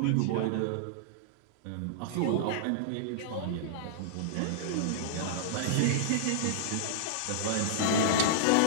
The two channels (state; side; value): different; both; correlation -0.02